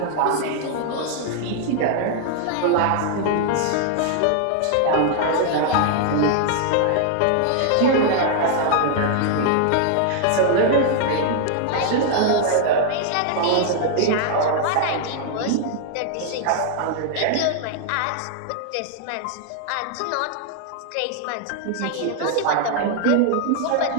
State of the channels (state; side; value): different; both; correlation 0.00